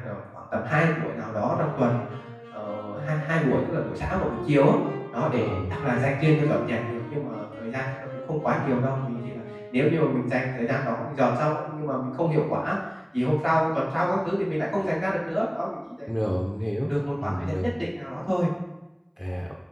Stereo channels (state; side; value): identical; both; correlation 1.00